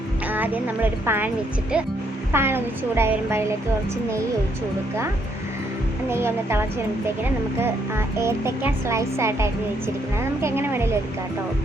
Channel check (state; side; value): normal; both; correlation 0.72